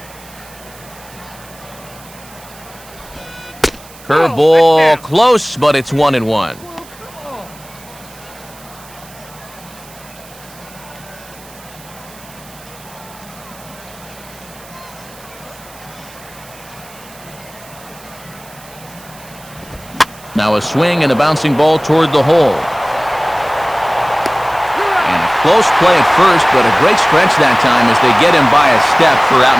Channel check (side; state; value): right; noise; hiss, 21 dB below the sound